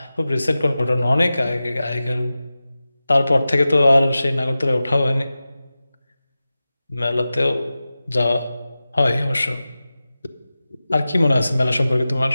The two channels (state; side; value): inverted; both; correlation -0.95